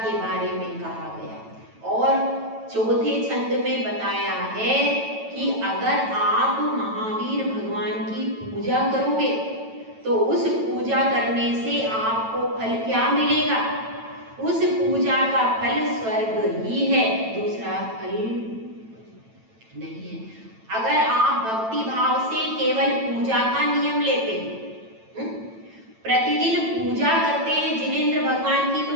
बारे में कहा गया। और चौथे छंद में बताया है कि अगर आप महावीर भगवान की पूजा करोगे तो उस पूजा करने से आपको फल क्या मिलेगा, उस पूजा का फल स्वर्ग ही है, दूसरा फल नहीं है। अगर आप भक्ति भाव से केवल पूजा का नियम लेते हैं, प्रतिदिन पूजा करते हैं जिनेंद्र भगवान की,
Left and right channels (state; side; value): late; left; 9.0 ms